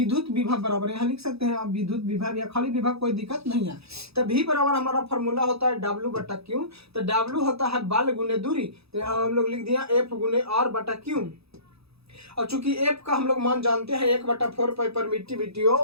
विभव बराबर, यहाँ लिख सकते हैं आप विद्युत विभव या खाली विभव, कोई दिक्कत नहीं है। तो V बराबर हमारा फॉर्मूला होता है W/Q, तो W होता है बल गुने दूरी, तो यहाँ हम लोग लिख दिया F × R/Q। और चूंकि F का हम लोग मान जानते हैं 1/4 पाई परमिटिविटी O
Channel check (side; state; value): left; late; 0.78 ms